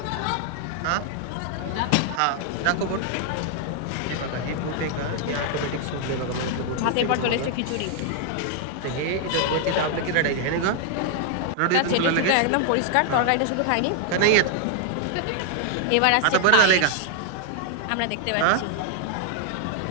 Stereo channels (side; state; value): both; different; correlation 0.00